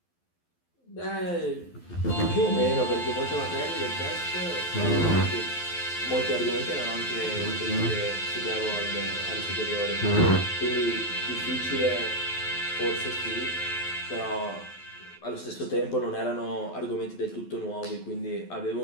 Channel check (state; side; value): late; right; 12 ms